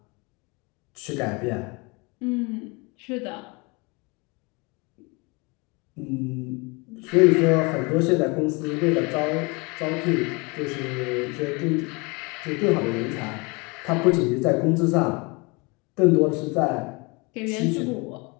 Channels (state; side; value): quieter; right; 28.3 dB